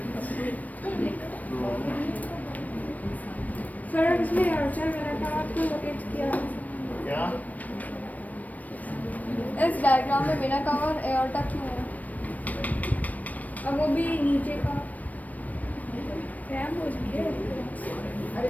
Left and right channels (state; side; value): late; right; 0.075 ms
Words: सर इसमें अर्चर मैंने कहा आपको लोकेट किया क्या इस डायग्राम में बिना कवर एयरटा क्यों है? अब वो भी नीचे का हो है। अरे